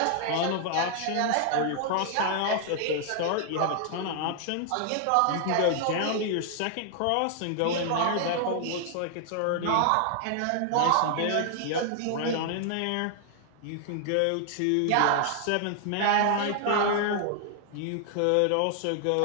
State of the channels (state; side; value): different; both; correlation 0.00